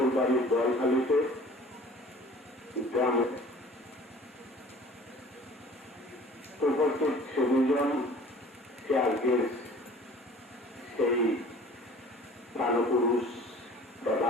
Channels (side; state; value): both; normal; correlation 0.47